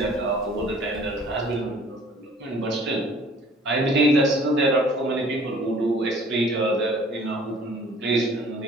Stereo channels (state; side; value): normal; both; correlation 0.53